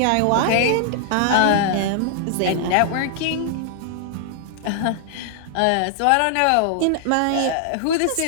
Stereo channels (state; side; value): different; both; correlation -0.01